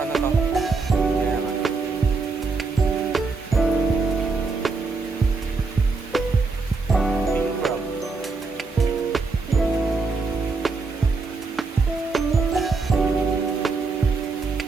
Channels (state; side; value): quieter; left; 4.1 dB